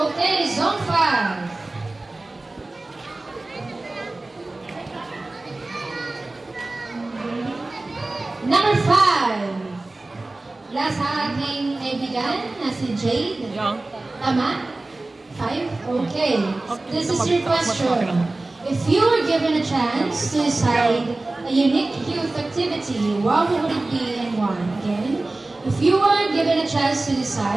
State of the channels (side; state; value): left; quieter; 3.0 dB